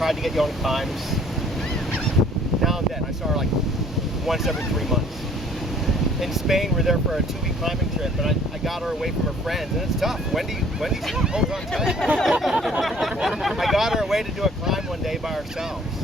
to get you on climbs. Now and then, I saw her like once every 3 months. In Spain, we're there for a 2-week climbing trip, and I got her away from her friends, and it's tough. Wendy holds on tight. I got her away to do a climb one day by ourselves.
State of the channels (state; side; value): normal; both; correlation 0.56